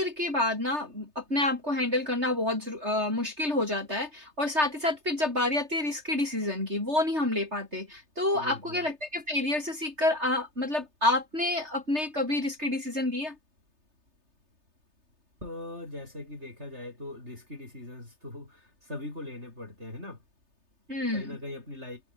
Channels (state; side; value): late; left; 3.3 ms